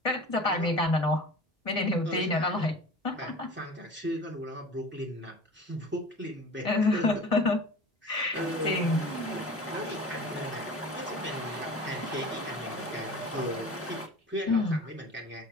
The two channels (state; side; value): normal; both; correlation 0.39